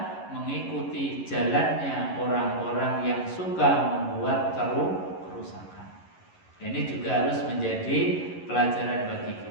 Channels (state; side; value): late; right; 11 ms